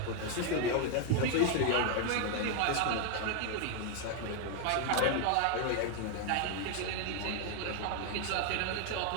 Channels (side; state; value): both; different; correlation 0.01